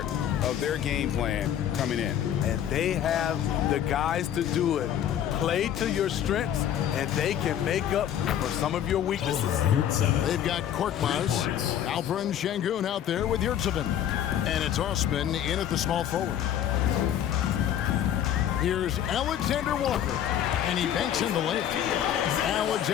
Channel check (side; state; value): right; quieter; 10.3 dB